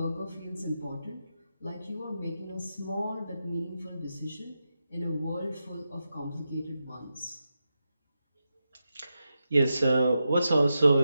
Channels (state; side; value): inverted; both; correlation -0.89